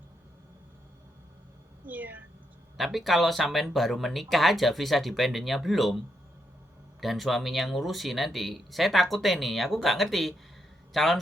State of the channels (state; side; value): normal; both; correlation 0.80